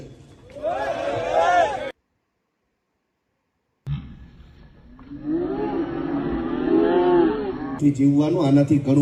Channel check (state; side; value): identical; both; correlation 1.00